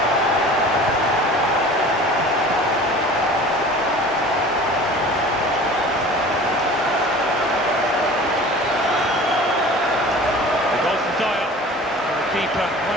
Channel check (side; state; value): both; normal; correlation 0.42